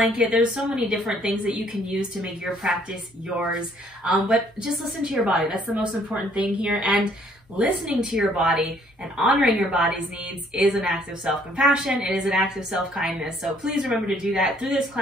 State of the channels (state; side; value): normal; both; correlation 0.63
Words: There's so many different things that you can use to make your practice yours. But just listen to your body. That's the most important thing here. And listening to your body and honoring your body's needs is an act of self-compassion. It is an act of self-kindness. So please remember to do that through this